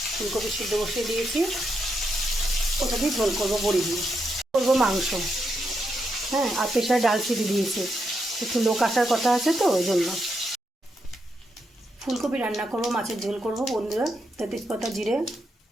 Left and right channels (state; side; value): normal; both; correlation 0.82